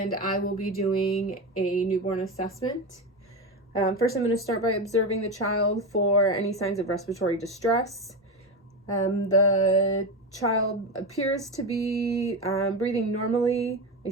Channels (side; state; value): both; normal; correlation 0.17